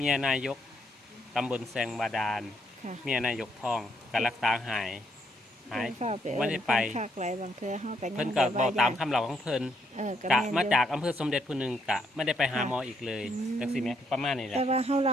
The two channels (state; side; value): normal; both; correlation 0.73